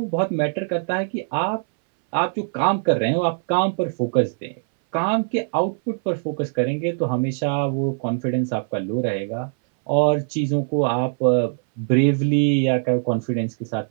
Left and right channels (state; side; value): silent; left; 61 dB below the other